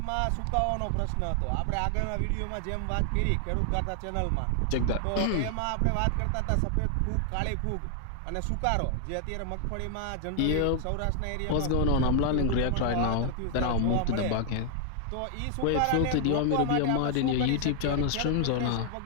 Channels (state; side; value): different; both; correlation 0.00